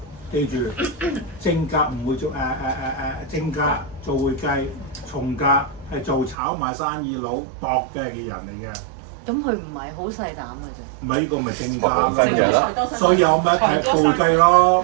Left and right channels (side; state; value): left; drops out; at 6.4 s